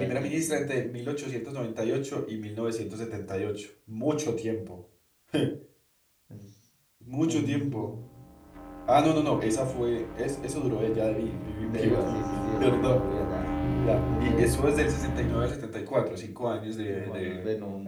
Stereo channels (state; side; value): identical; both; correlation 1.00